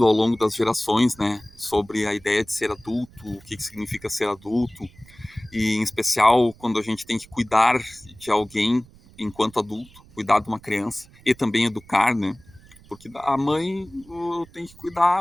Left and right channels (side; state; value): right; noise; rumble, 25 dB below the sound